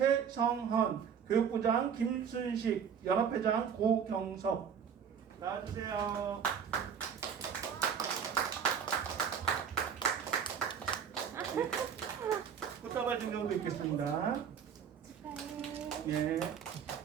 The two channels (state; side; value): quieter; left; 7.5 dB